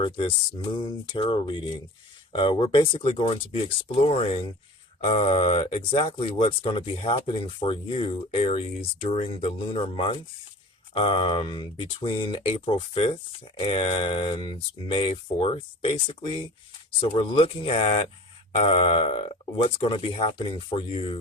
this moon tarot reading. We're basically going to be exploring exactly what's going to be happening for you, Aries, during the lunar month between April 5th and May 4th, basically. So we're looking at what's going to be happening for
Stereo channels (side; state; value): both; normal; correlation 0.40